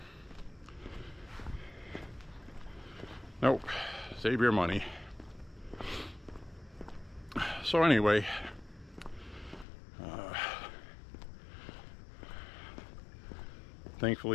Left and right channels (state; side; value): drops out; right; at 9.7 s